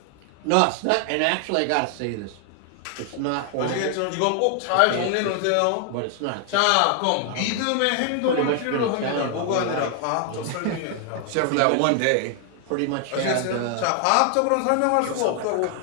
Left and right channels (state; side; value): different; both; correlation 0.00